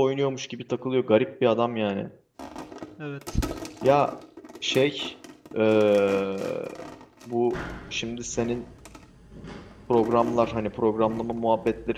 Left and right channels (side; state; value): both; identical; correlation 1.00